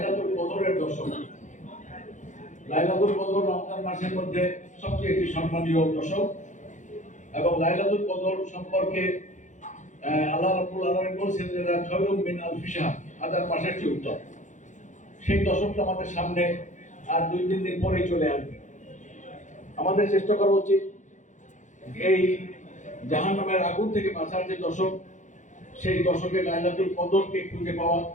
কদরের দশক। লাইলাতুল কদর রমজান মাসের মধ্যে সবচেয়ে একটি সম্মানীয় দশক এবং লাইলাতুল কদর সম্পর্কে আল্লাহ রাব্বুল আলামিন বলেছেন যে খায়রুম মিন আলফি শাহর, 1000 মাসের চেয়ে উত্তম। সেই দশকটা আমাদের সামনে আর 2-3 দিন পরেই চলে আসবে। আমাদের চেষ্টা করা উচিত এই জাহান্নামের আগুন থেকে বাঁচার যে দশক, সেই দশকে লাইলাতুল কদরকে খুঁজে পাওয়া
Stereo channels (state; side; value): late; right; 0.36 ms